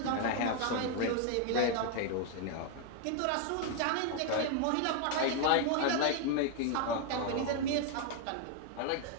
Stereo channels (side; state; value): both; different; correlation 0.01